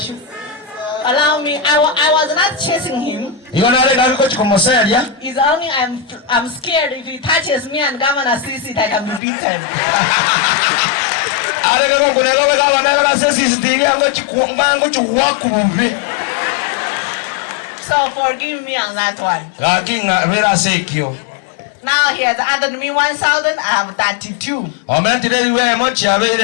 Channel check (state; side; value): drops out; right; at 9.2 s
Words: allow me. I was not chasing him. It's only I'm scared if he touches me and Governor sees it, I can be beaten. So forgive me on that one. Now he has added me 1,000. I have 32.